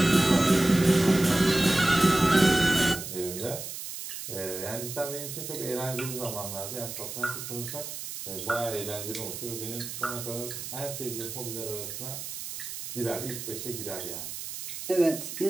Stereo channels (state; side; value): noise; right; hiss, 8 dB below the sound